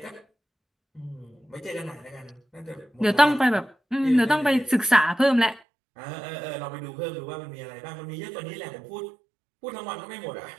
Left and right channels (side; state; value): left; drops out; at 5.6 s